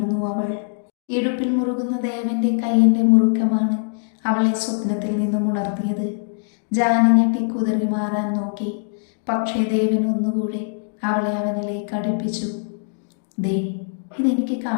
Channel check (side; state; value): right; silent; digital silence